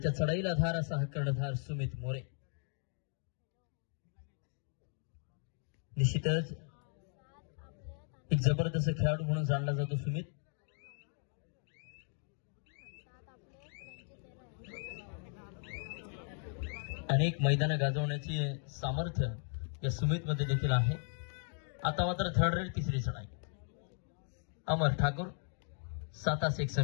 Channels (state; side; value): silent; right; 53 dB below the other